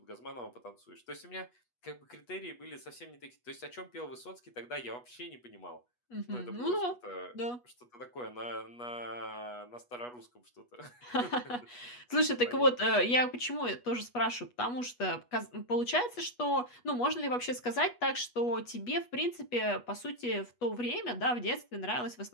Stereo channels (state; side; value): late; right; 8.2 ms